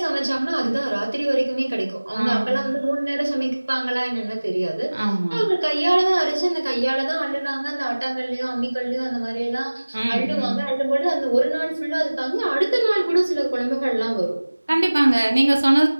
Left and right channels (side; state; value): both; inverted; correlation -1.00